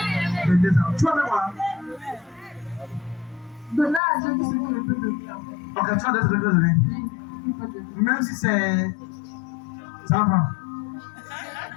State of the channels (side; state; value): right; drops out; at 4.0 s